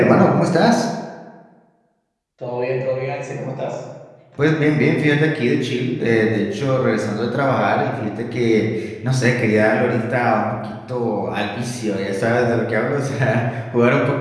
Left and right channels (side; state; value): both; identical; correlation 1.00